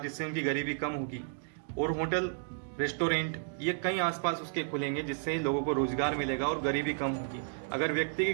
उनकी गरीबी कम होगी। और होटल, रेस्टोरेंट ये कई आसपास उसके खुलेंगे, जिससे लोगों को रोजगार मिलेगा और गरीबी कम होगी। अगर व्यक्ति की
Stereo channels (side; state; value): left; silent; digital silence